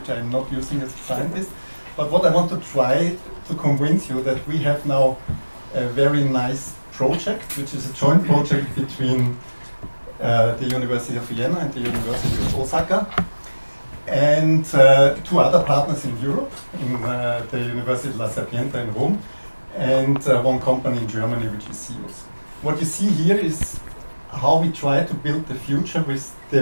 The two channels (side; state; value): both; inverted; correlation -1.00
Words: I'm not using as a scientist. But what I want to try to convince you that we have now a very nice project, which is a joint project between the University of Vienna and the University of Osaka, and two other partners in Europe, in the University La Sapienza in Rome, and one company in Germany, which is SIUS. What you see here is how we try to build the future with